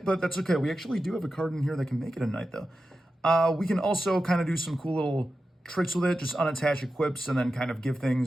but that's okay. We actually do have a card in here that can make it a Knight, though. We can also kind of do some cool little tricks with it, just unattach equips and then kind of give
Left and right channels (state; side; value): normal; both; correlation 0.92